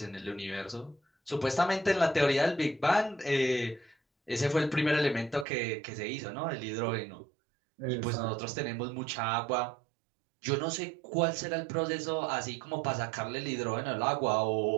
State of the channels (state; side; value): drops out; left; at 5.5 s